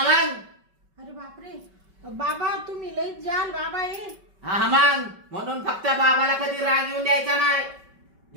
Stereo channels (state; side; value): late; left; 5.3 ms